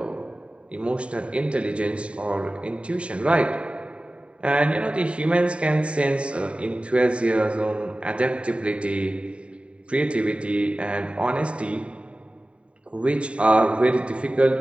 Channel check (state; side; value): late; left; 0.060 ms